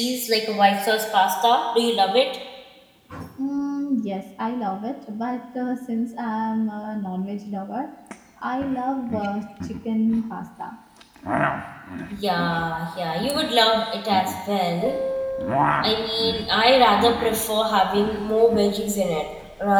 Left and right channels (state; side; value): identical; both; correlation 1.00